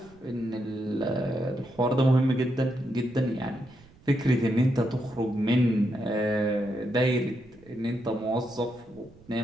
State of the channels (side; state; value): right; noise; rumble, 25 dB below the sound